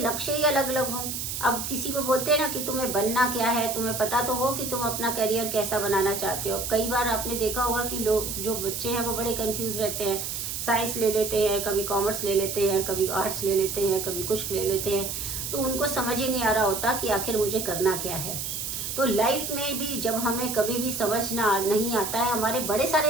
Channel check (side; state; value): right; noise; hiss, 4 dB below the sound